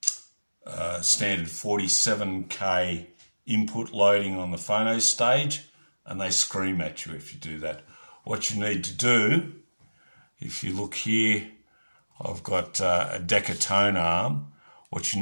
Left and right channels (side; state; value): both; inverted; correlation -1.00